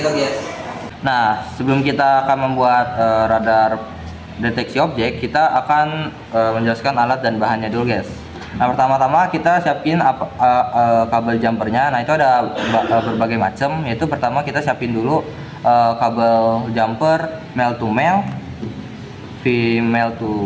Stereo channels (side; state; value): both; identical; correlation 1.00